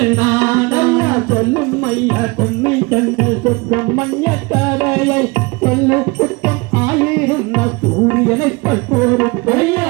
நாடா சொல்லும் ஐயா பொன்னை கண்கள் சொற்றம் மஞ்ச தரையை சொல்லு குற்றம் ஆயிருந்த சூரியனை போரு ஐயா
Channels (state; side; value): quieter; left; 26.6 dB